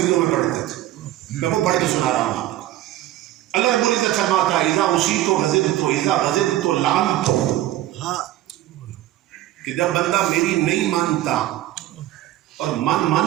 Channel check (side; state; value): left; quieter; 14.5 dB